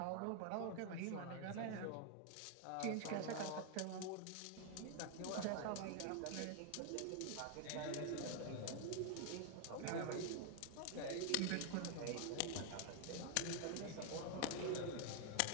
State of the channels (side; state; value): both; different; correlation 0.00